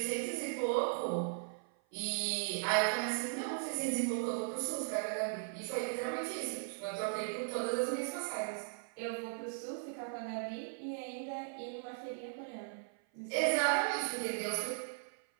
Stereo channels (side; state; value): left; silent; 52 dB below the other